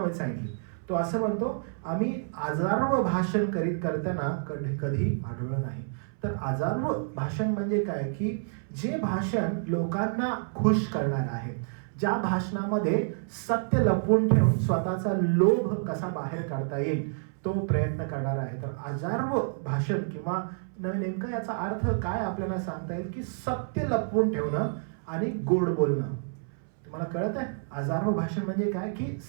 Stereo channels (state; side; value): silent; left; 59 dB below the other